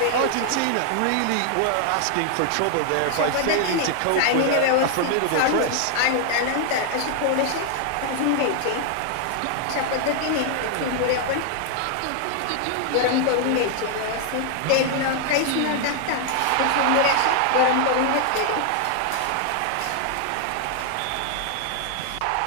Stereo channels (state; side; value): different; both; correlation 0.00